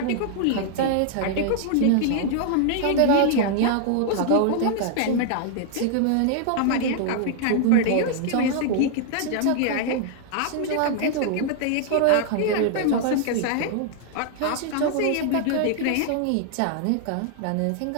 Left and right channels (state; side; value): different; both; correlation -0.01